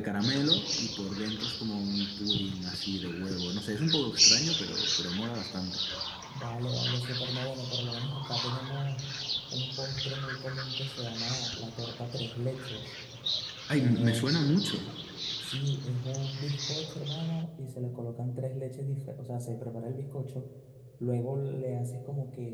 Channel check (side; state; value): both; identical; correlation 1.00